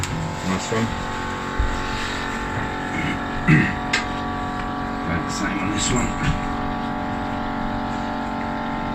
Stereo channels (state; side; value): identical; both; correlation 1.00